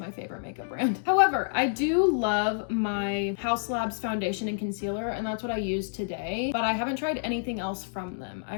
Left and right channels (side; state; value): right; silent; digital silence